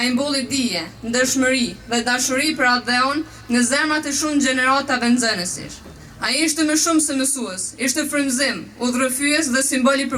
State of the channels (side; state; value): both; identical; correlation 1.00